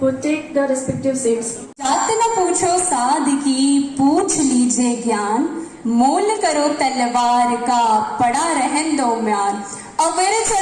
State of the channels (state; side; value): identical; both; correlation 1.00